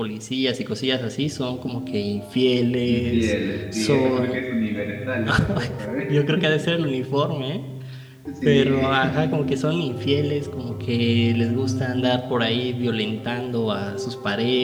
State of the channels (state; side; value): identical; both; correlation 1.00